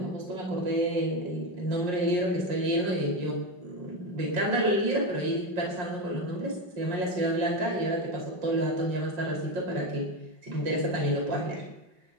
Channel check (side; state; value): left; late; 5.6 ms